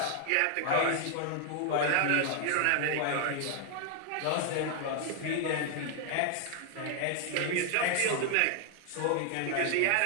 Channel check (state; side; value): different; both; correlation 0.00